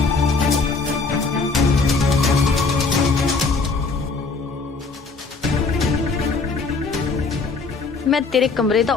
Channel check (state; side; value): quieter; right; 4.2 dB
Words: ਮੈਂ ਤੇਰੇ ਕਮਰੇ ਦਾ